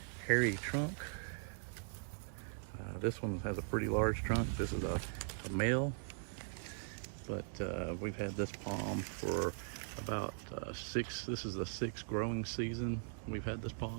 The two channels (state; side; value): silent; left; digital silence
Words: hairy trunk. This one has a pretty large trunk. This is a male, but we've had this palm for about this is the 6th growing season we've had this